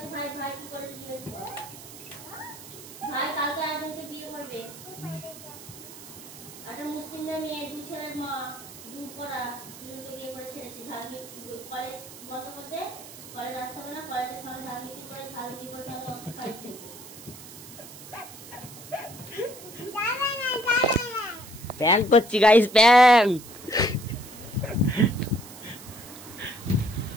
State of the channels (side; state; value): right; noise; hiss, 15 dB below the sound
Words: ভাই ভাই কি করেছে জিজ্ঞেস কর ভাই কালকে একজনকে বিয়ে করবে একটা মুসলিমদের মেয়ে দু ছেলের মা দূর করা দুজনকে বিয়ে করে ছেড়েছে কলেজ বন্ধ করতে কলেজ আসতে হবে না কলেজের সামনে ঝালমিটি করে তাহলে ওষুধ খাইছে প্র্যাঙ্ক করছি গাইস,